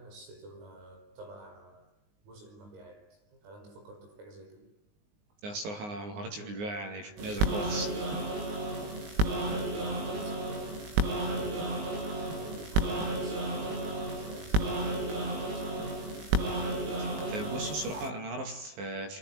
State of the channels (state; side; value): late; left; 19 ms